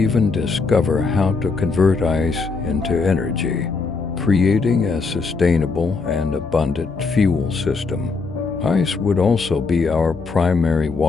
discover how to convert ice into energy, creating a sustainable and abundant fuel system. Ice would also be our primary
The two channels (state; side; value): quieter; right; 4.4 dB